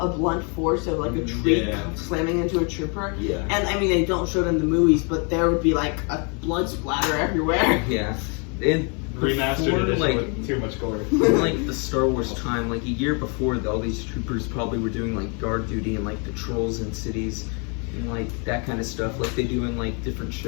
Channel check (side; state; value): right; quieter; 35.9 dB